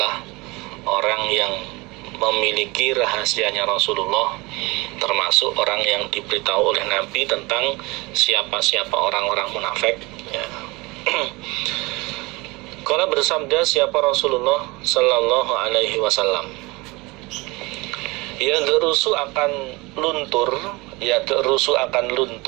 orang yang memiliki rahasianya Rasulullah, termasuk orang yang diberitahu oleh Nabi tentang siapa-siapa orang-orang munafik, ya. Qala, bersabda siapa Rasulullah sallallahu alaihi wasallam, yadrusu akan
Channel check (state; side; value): quieter; left; 23.9 dB